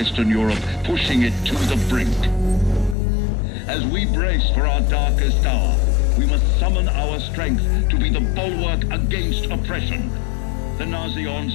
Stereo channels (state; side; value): drops out; right; at 3.0 s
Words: Europe, pushing it to the brink. As we brace for our darkest hour, we must summon our strength to be the bulwark against oppression. The Nazi